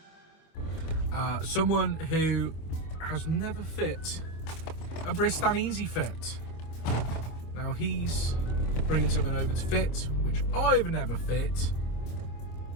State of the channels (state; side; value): late; right; 25 ms